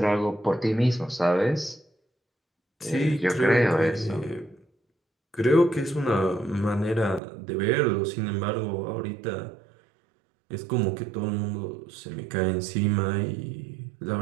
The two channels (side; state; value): left; drops out; at 7.2 s